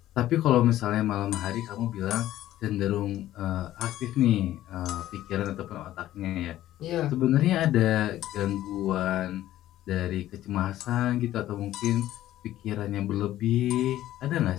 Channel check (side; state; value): right; quieter; 13.7 dB